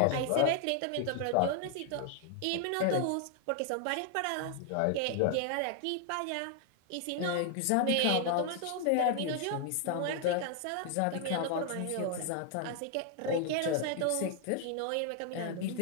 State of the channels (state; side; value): different; both; correlation 0.00